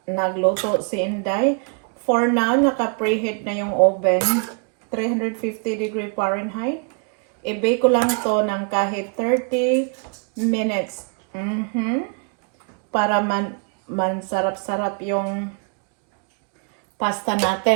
nagluto si Inday. For now, naka-preheat na yung oven. 350 degree Fahrenheit. I-bake ko lang to ng kahit 30 minutes. Para sarap-sarap yung pasta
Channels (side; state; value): left; quieter; 38.6 dB